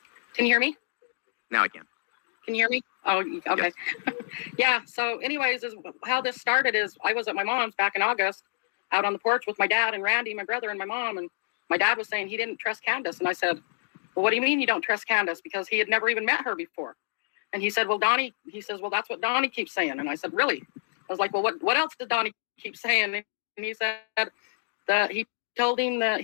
you hear me? Now I can. Can you hear me? Oh, okay. Yes. Yeah, so anyways, how this started is I was at my mom's back in August, out on the porch with my dad and Randy, my brother, and my mom, and my dad was saying he didn't trust Candace, and I said, well, what do you mean you don't trust Candace? Because he had never even met her before. And he said, well, he says, well, that's what Donnie keeps saying. And I said, really? I was like, well, what else did Donnie keep saying? And he said that he told him that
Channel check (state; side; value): silent; right; digital silence